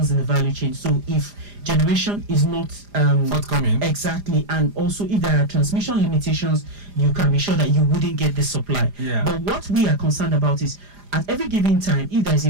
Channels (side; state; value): left; late; 4.9 ms